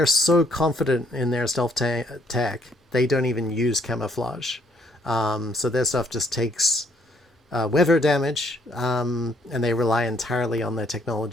so confident in their stealth tech they don't even use camouflage. So their stuff just takes weather damage, and they rely entirely on their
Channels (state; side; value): normal; both; correlation 0.67